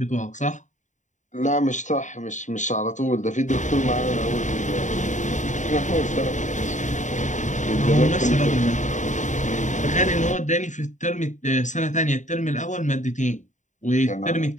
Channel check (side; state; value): right; late; 0.36 ms